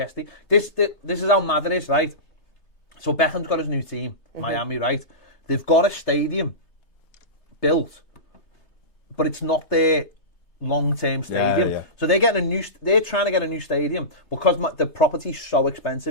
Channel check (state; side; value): late; right; 3.3 ms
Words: This is how mad it is, right? So Beckham's got his new team, Miami, right? They've got a stadium built, but it's not their long-term stadium. Yeah. So they're trying to get a new stadium because the property's so